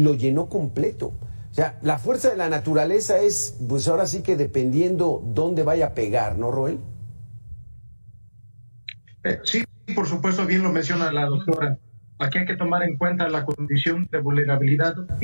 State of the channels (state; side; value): inverted; both; correlation -1.00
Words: llenó completo. O sea, la fuerza de la naturaleza es, pues ahora sí que dependiendo dónde vaya a pegar, ¿no, Roel? Sí, por supuesto, bien lo menciona la doctora. Aquí hay que tomar en cuenta la condición de vulnerabilidad